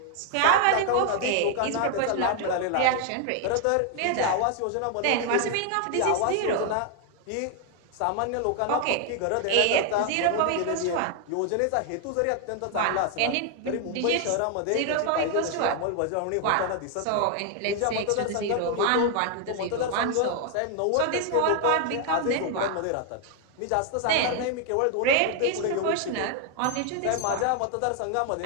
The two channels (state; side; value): different; both; correlation 0.00